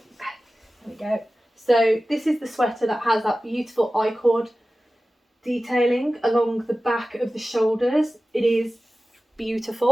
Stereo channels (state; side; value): normal; both; correlation 0.96